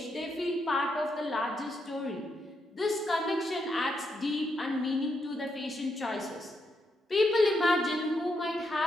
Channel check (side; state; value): both; normal; correlation 0.80